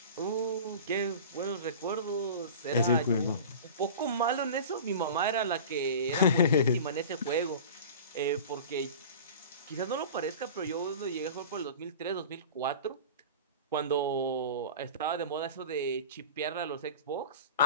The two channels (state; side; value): inverted; both; correlation -0.36